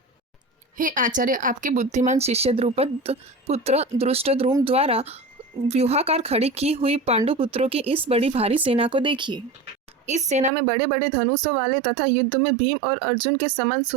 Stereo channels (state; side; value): drops out; left; at 10.5 s